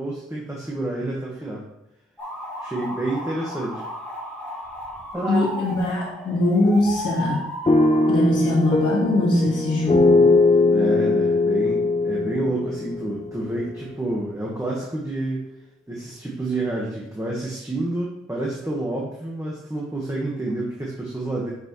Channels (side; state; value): both; normal; correlation 0.72